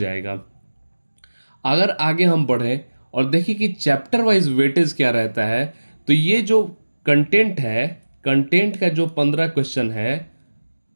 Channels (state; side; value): inverted; both; correlation -1.00